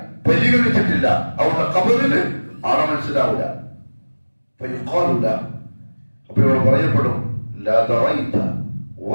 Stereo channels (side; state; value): both; inverted; correlation -1.00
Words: പരിഗണിച്ചിട്ടില്ല. അവരുടെ ഖബറിന് ആളെ മനസ്സിലാവില്ല. അപ്പൊ ഇവിടെ പറയപ്പെടും, ലാ ദറൈത